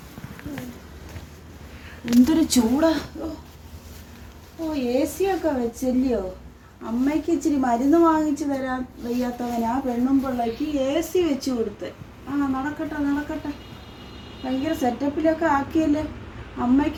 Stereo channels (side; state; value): both; identical; correlation 1.00